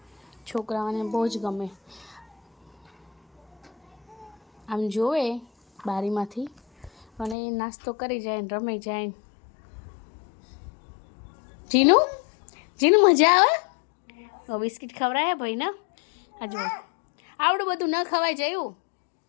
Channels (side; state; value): right; drops out; at 7.4 s